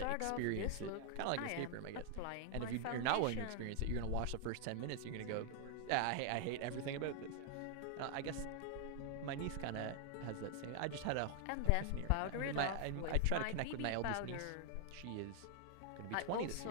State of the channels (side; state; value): both; different; correlation 0.00